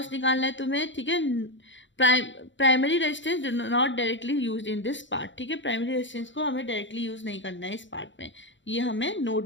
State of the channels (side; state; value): right; late; 0.54 ms